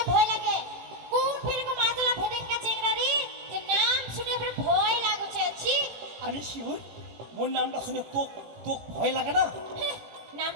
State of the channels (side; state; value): left; late; 18 ms